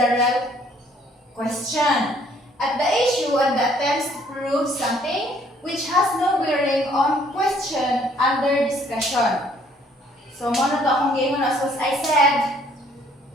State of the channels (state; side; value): normal; both; correlation 0.62